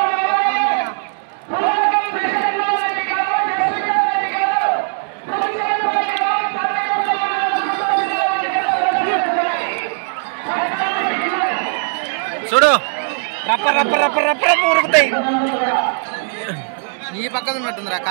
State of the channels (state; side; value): silent; left; digital silence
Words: చూడు రప్ప రప్ప రప్ప రప్ప రప్ప ఉరుకుతాయి. ఈ పక్కన ఉన్నట్టుందిరా